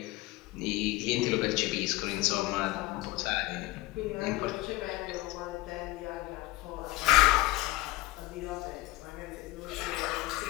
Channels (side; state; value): right; quieter; 19.2 dB